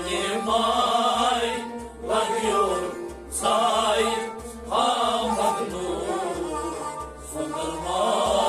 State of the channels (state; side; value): identical; both; correlation 1.00